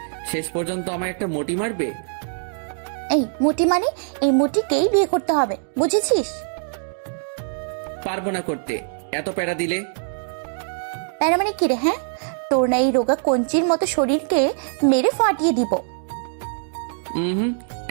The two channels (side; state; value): left; silent; digital silence